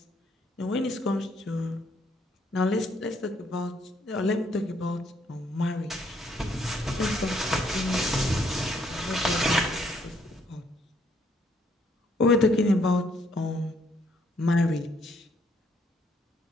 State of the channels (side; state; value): both; normal; correlation 0.69